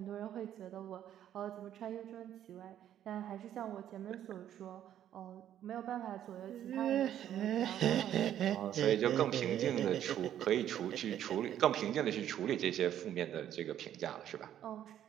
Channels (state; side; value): quieter; left; 10.9 dB